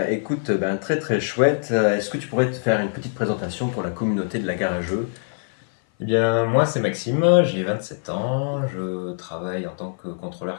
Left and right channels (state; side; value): silent; right; 56 dB below the other